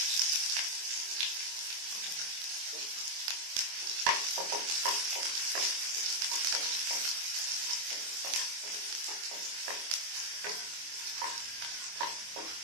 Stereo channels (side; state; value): left; late; 24 ms